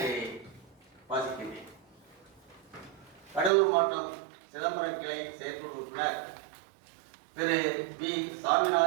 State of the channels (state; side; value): drops out; left; at 3.5 s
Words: வாசிக்கின்றேன். கடலூர் மாவட்டம் சிதம்பரம் கிளை செயற்குழு உறுப்பினர் திரு பி